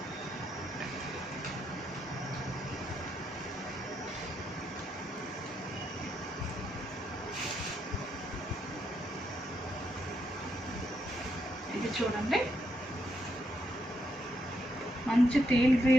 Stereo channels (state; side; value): normal; both; correlation 0.79